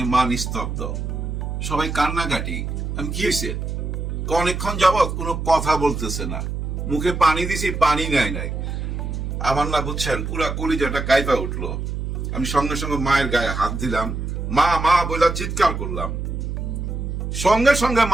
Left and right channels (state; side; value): noise; right; hum, 4 dB below the sound